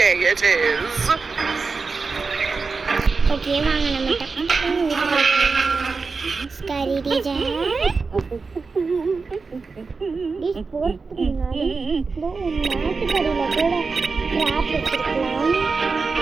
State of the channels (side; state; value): left; quieter; 4.5 dB